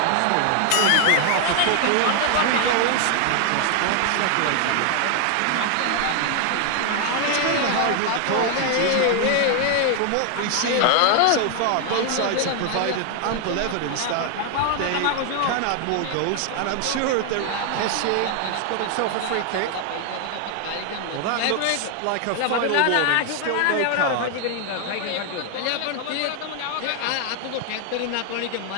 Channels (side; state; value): both; different; correlation 0.00